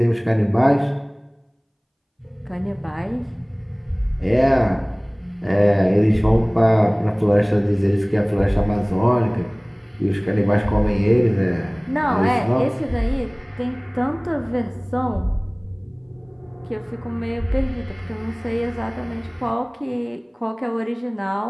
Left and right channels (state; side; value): identical; both; correlation 1.00